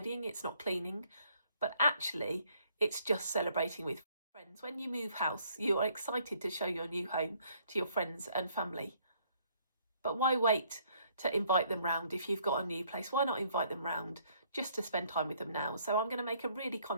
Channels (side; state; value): both; inverted; correlation -0.65